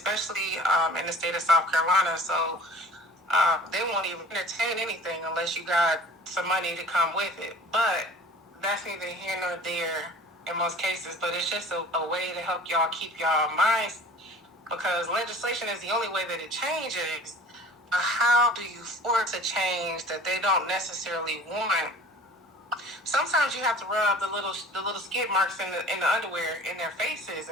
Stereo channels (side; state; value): both; normal; correlation 0.44